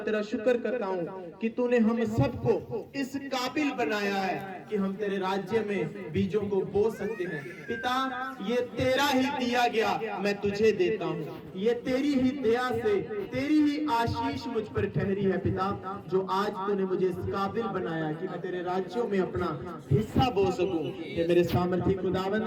तेरा शुक्र करता हूँ कि तूने हम सबको इस काबिल बनाया है कि हम तेरे राज्य में बीजों को बो सकते हैं। पिता, ये तेरा ही दिया गया मैं तुझे देता हूँ, ये तेरी ही दया से, तेरी ही आशीष मुझ पर ठहरी है पिता, जो आज तूने मुझे इस काबिल बनाया कि मैं तेरे राज्यों में अपना हिस्सा बो सकूं। ये मेरे सामर्थी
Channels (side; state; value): both; identical; correlation 1.00